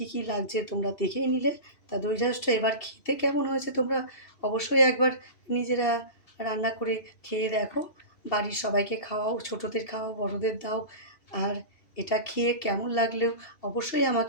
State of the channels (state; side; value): late; right; 2.7 ms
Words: কি লাগছে তোমরা দেখেই নিলে। তা দই ঢ্যাঁড়সটা এবার খেতে কেমন হয়েছে তোমরা অবশ্যই একবার নিজেরা রান্না করে খেয়ে দেখো, বাড়ির সবাইকে খাওয়াও, ছোটোদের খাওয়াও, বড়োদের দাও। আর এটা খেয়ে কেমন লাগলেও অবশ্যই